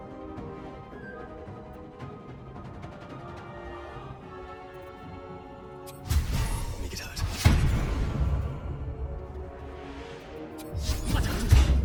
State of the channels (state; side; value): identical; both; correlation 1.00